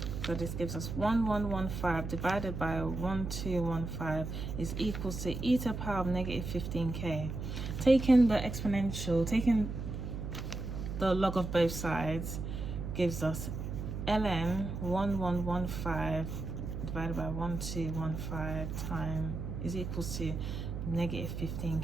so this gives us 1115 divided by 1215 is equals to e to the power of negative 15k. Taking the exponential, taking the log of both sides gives us ln 1115 divided by 1215 time is equals to negative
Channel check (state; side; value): noise; right; hum, 5 dB below the sound